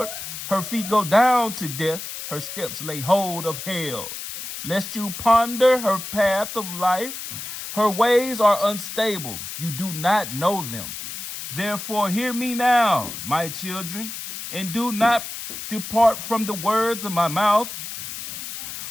her feet go down to death, her steps lay hold of hell. Lest you ponder her path of life, her ways are unstable, you do not know them. Therefore hear me now, my children, and do not depart from the words of my mouth.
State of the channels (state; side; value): noise; left; hiss, 8 dB below the sound